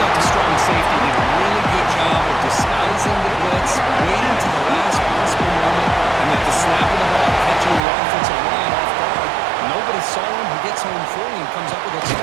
the strong safety did a really good job of disguising the blitz, waiting to the last possible moment, and at the snap of the ball, catching the offensive line off guard. Nobody saw him. He gets home free and comes up with a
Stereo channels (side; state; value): left; drops out; at 7.8 s